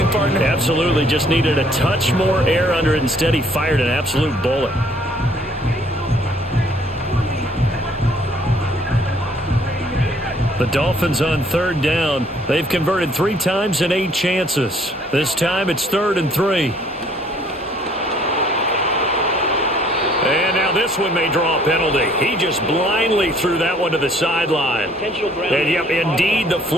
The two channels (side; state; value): both; normal; correlation 0.61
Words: partner? Absolutely. Just needed a touch more air under it. Instead, he fired an absolute bullet. The Dolphins on 3rd down. They've converted 3 times in 8 chances. This time it's 3rd and 3. And now this one may draw a penalty. He just blindly threw that one to the sideline. And yep, indeed, the